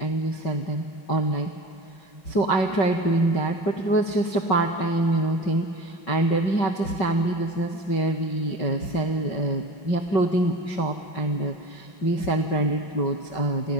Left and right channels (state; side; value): late; right; 5.3 ms